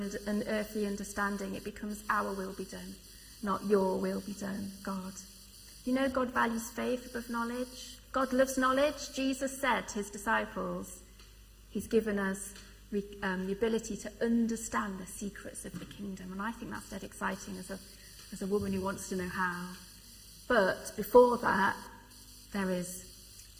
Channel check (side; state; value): both; identical; correlation 1.00